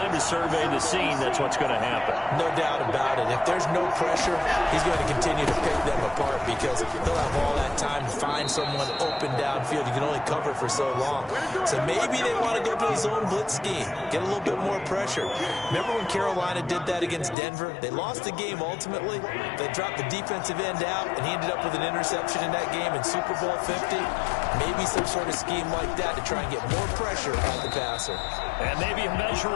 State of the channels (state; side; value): drops out; right; at 17.4 s